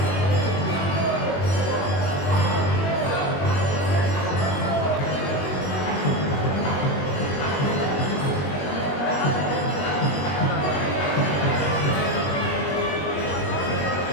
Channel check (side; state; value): right; late; 21 ms